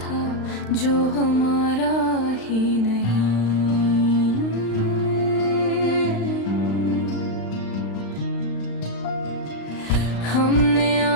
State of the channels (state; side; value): late; right; 35 ms